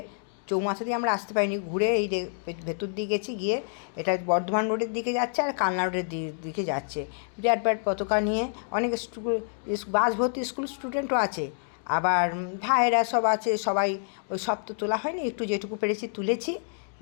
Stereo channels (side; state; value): right; silent; digital silence